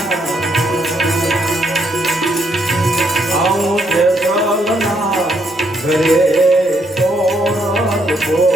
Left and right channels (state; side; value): normal; both; correlation 0.73